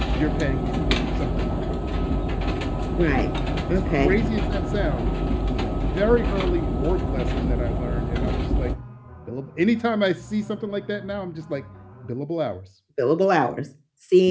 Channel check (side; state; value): both; identical; correlation 1.00